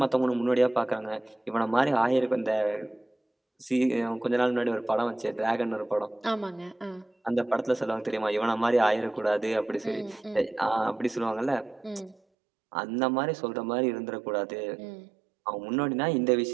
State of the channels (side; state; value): left; drops out; at 12.2 s